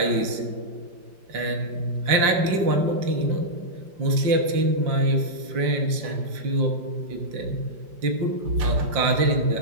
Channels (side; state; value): left; late; 5.1 ms